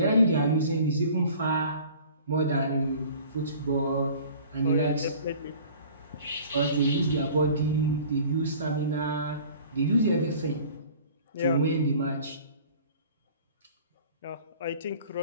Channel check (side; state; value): both; inverted; correlation -0.47